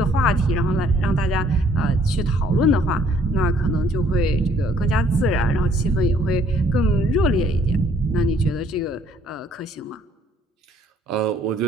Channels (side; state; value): both; normal; correlation 0.62